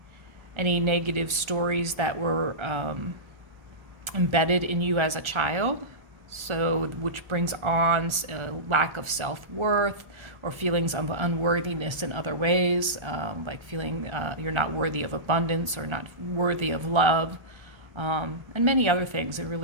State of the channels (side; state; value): left; late; 1.3 ms